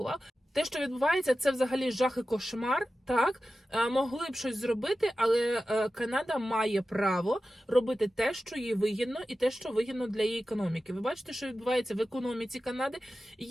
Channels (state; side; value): normal; both; correlation 0.94